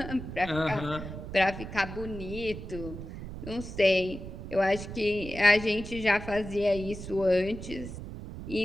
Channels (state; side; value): noise; right; rumble, 10 dB below the sound